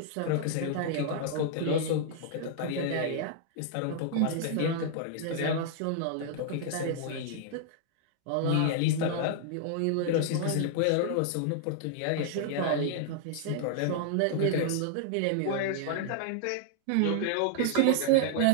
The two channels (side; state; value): both; different; correlation -0.01